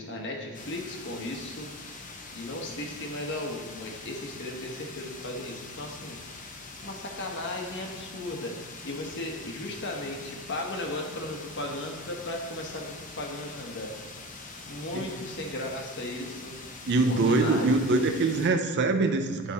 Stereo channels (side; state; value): both; normal; correlation 0.31